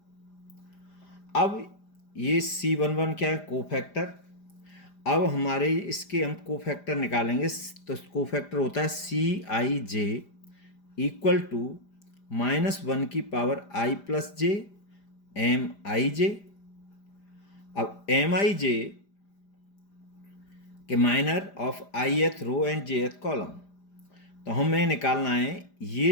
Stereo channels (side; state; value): right; late; 5.0 ms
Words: अब ये C11 क्या है, कोफैक्टर। अब हमारे इसके हम कोफैक्टर निकालेंगे, तो कोफैक्टर होता है CIJ इक्वल टू -1 की power I plus J MIJ। अब MIJ के minor of ith row and jth column, तो हमें निकालना है